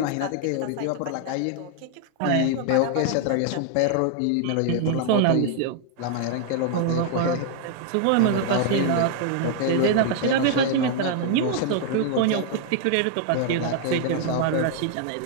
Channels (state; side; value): different; both; correlation 0.00